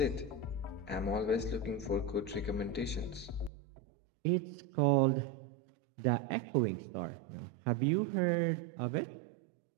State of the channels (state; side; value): drops out; left; at 3.5 s